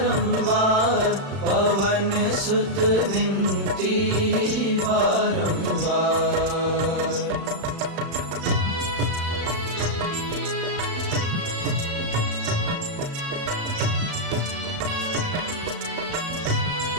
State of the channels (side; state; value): left; late; 36 ms